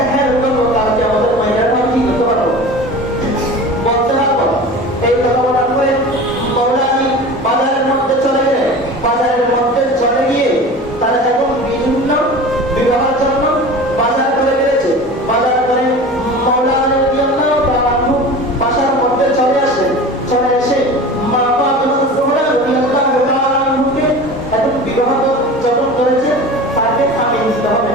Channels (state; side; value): normal; both; correlation 0.36